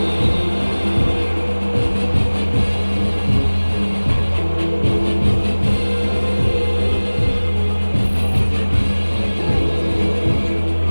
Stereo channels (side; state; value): both; inverted; correlation -1.00